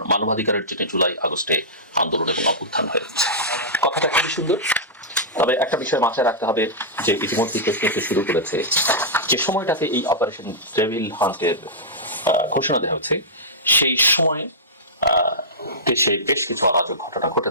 মানবাধিকারের জন্য জুলাই আগস্টে আন্দোলন এবং অভ্যুত্থান হয়েছে। কথাটা খুবই সুন্দর, তবে একটা বিষয় মাথায় রাখতে হবে যে ইতিমধ্যে প্রশ্ন শুরু করেছে যে সময়টাতে এই অপারেশন ডেভিল হান্টের ঘোষণা দেওয়া হচ্ছে, সেই সময় দেশে বেশ কিছু অরাজক ঘটনা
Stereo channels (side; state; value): both; normal; correlation -0.13